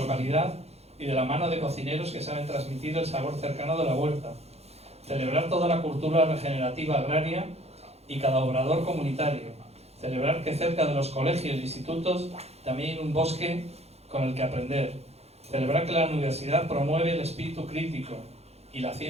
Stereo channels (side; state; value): left; late; 0.30 ms